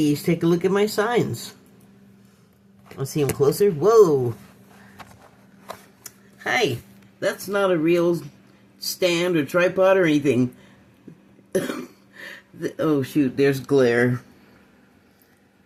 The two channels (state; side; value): identical; both; correlation 1.00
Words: take a look at my signs. Let's see them closer. Whoa. Hi. That's not a real stand or tripod or anything. Oh, shoot, there's glare.